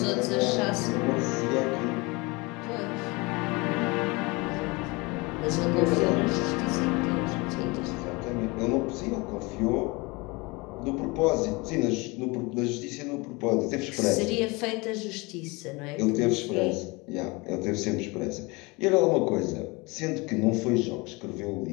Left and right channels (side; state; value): right; quieter; 25.7 dB